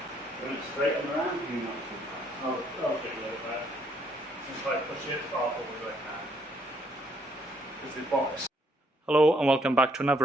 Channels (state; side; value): normal; both; correlation 0.69